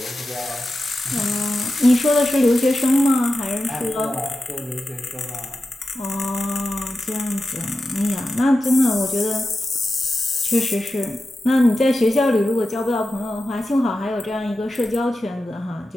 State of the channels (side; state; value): both; normal; correlation 0.92